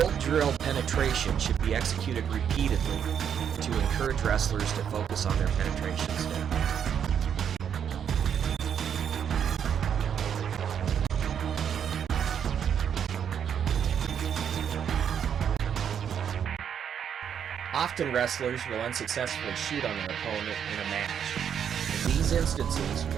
drill penetration should be executed repeatedly to encourage wrestlers to focus on their penetration step. Often wrestlers will unsuccessfully shoot on their opponent in a match. In these instances,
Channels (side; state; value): left; quieter; 8.3 dB